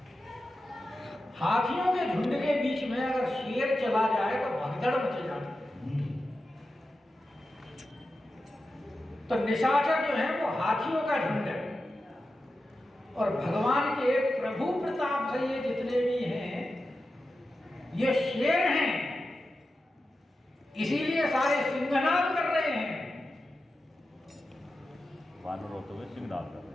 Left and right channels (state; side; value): normal; both; correlation 0.91